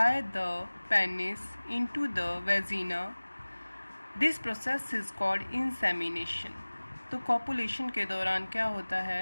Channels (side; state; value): both; inverted; correlation -1.00